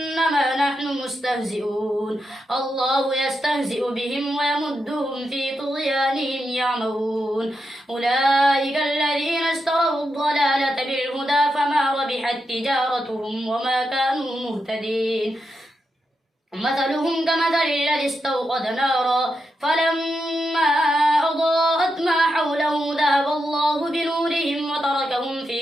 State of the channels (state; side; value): normal; both; correlation 0.86